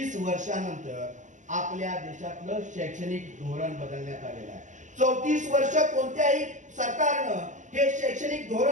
वर्षानंतर आपल्या देशातलं शैक्षणिक धोरण बदलण्यात आलेलं आहे. 34 वर्ष कोणत्याही सरकारनं हे शैक्षणिक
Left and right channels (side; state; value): left; late; 0.36 ms